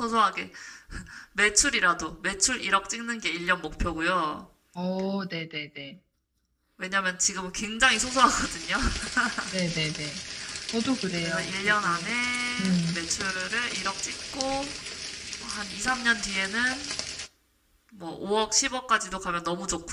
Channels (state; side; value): identical; both; correlation 1.00